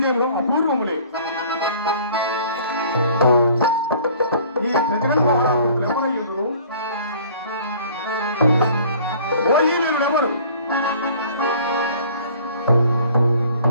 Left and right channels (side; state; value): both; inverted; correlation -0.51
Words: అపూర్వములే. ఈ జగన్మోహనుడు ఎవరయ్యుడు? ఓ ఈ వీరుడెవరు?